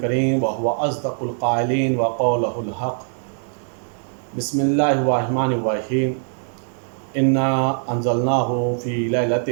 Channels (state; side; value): silent; left; 58 dB below the other